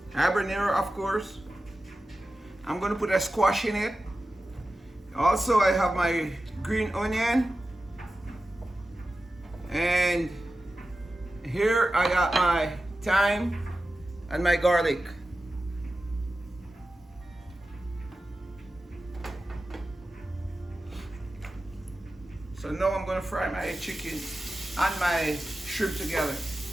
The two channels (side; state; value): both; normal; correlation 0.94